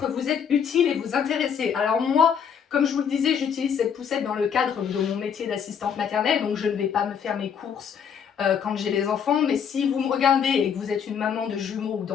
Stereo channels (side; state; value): right; quieter; 7.5 dB